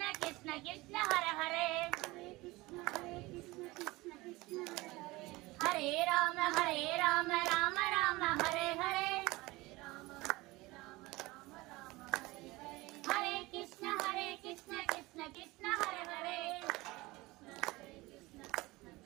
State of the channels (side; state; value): left; quieter; 21.1 dB